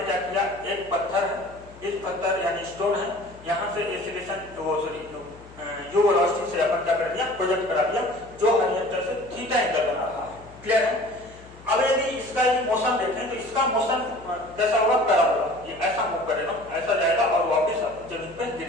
क्या किया? एक पत्थर है, इस पत्थर यानी स्टोन है, यहां से एक्सीलरेशन यू वेलोसिटी से अपन क्या कर दिया? प्रोजेक्ट करा दिया, जो हॉरिजॉन्टल से थीटा एंगल बना रहा है। क्लियर है? अब यदि इसका ये मोशन देखें तो इसका मोशन कैसा होगा? पैराबोला। ये ऐसा मूव करेगा, ऐसा जाएगा और वापस जमीन पे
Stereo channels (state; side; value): noise; left; hum, 22 dB below the sound